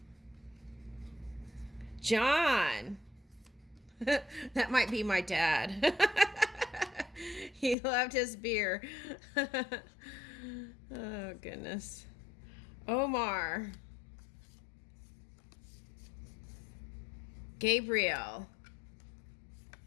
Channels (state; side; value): drops out; right; at 7.8 s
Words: John. That might be my dad. He loved his beer. Oh, goodness. Omar. Gabriel.